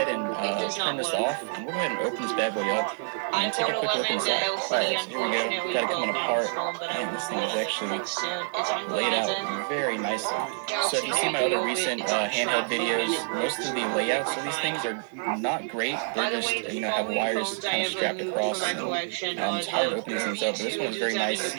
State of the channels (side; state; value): left; silent; 60 dB below the other